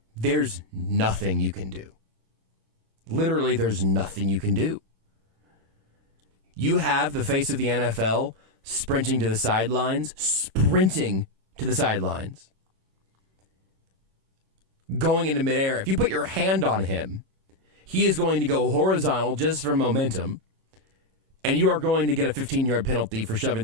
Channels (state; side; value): late; left; 26 ms